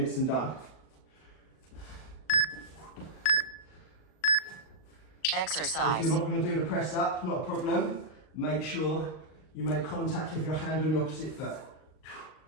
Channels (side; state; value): right; late; 38 ms